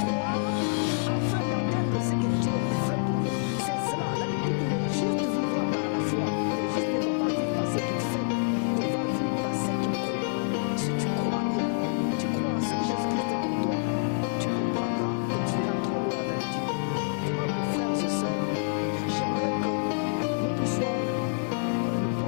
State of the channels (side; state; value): right; silent; digital silence